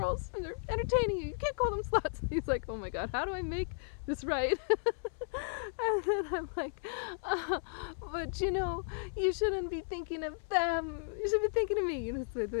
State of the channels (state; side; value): silent; right; 55 dB below the other